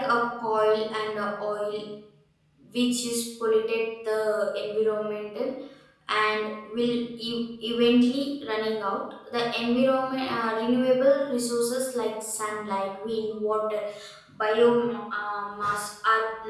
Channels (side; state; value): both; identical; correlation 1.00